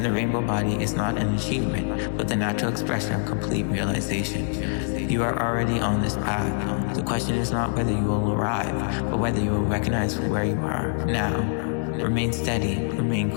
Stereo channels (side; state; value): right; silent; digital silence